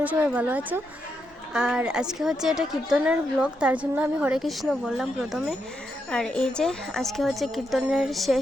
সবাই ভালো আছো। আর আজকে হচ্ছে এটা কীর্তনের ব্লগ, তার জন্য আমি হরে কৃষ্ণ বললাম প্রথমে। আর এই যে আজকে হচ্ছে কীর্তনের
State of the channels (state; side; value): normal; both; correlation 0.82